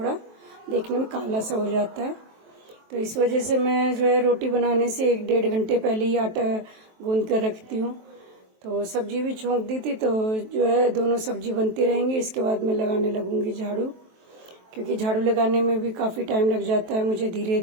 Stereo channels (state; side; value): late; left; 23 ms